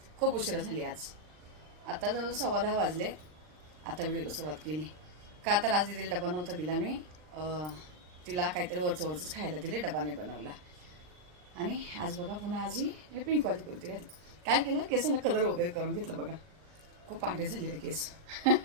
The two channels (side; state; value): left; late; 39 ms